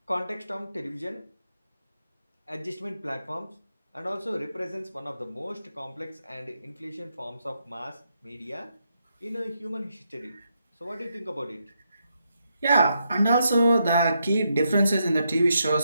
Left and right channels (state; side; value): inverted; both; correlation -0.81